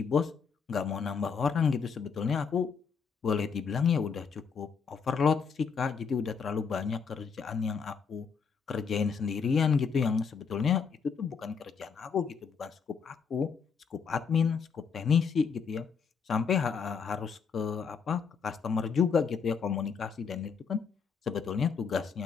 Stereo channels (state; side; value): quieter; right; 6.0 dB